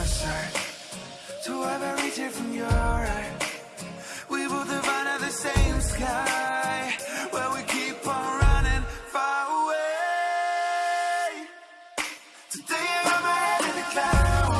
side, to ever reach it from your right. We both have under the same sky, where we keep on running far away. Today I got my head in the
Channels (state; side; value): identical; both; correlation 1.00